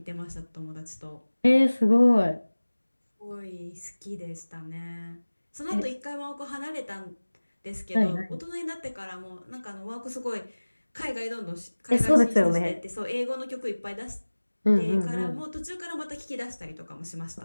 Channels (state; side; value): inverted; both; correlation -1.00